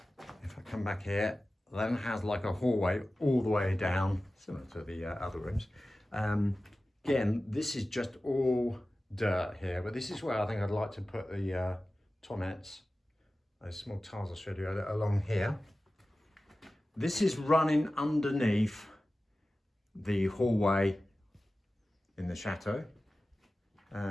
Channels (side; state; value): both; normal; correlation 0.96